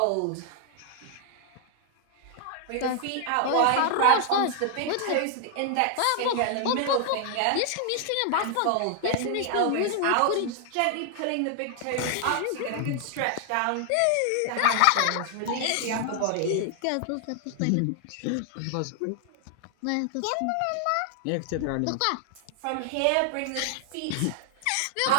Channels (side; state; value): both; different; correlation 0.00